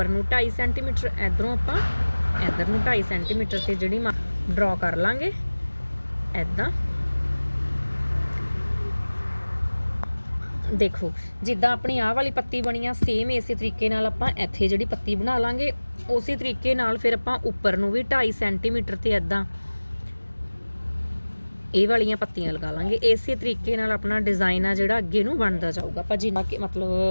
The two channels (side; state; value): both; inverted; correlation -1.00